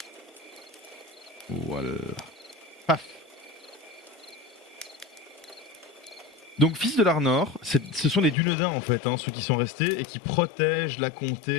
Voilà. Paf. Donc, fils de l'Arnor, ce sont les Dunedains en fait, hein, ceux qui sont restés et qui protègent la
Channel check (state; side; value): drops out; right; at 8.3 s